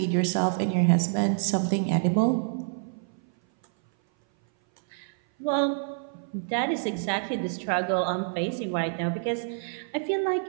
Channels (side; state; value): left; silent; 58 dB below the other